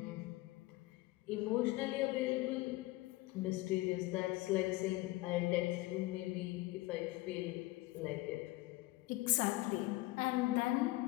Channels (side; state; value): right; quieter; 19.7 dB